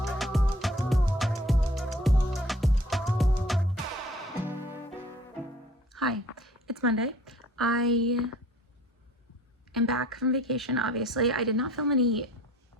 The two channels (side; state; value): both; normal; correlation 0.52